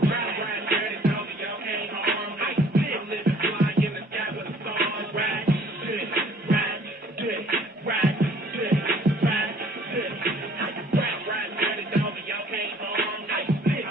dirty, dog, y'all can't harm me. I'm living fly in the sky with the stars. Ride dirty, ride dirty, ride.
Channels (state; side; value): normal; both; correlation 0.56